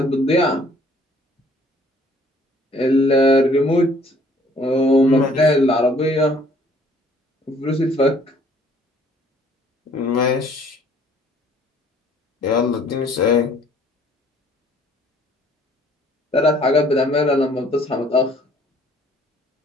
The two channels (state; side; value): normal; both; correlation 0.59